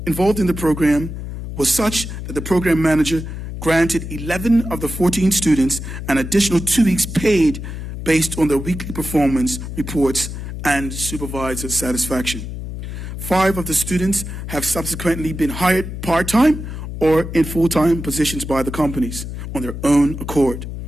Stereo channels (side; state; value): left; noise; hum, 7 dB below the sound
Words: involved in the program was such that the program manager granted 11 of the 14 students an additional 2 weeks paid based on their weekly performance reports and supervisor satisfaction. 5 of the students have subsequently been hired part-time or in full-time positions by the companies on their own accord.